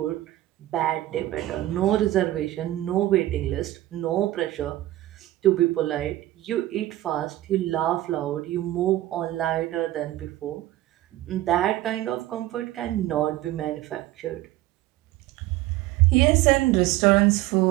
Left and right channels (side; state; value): left; quieter; 15.7 dB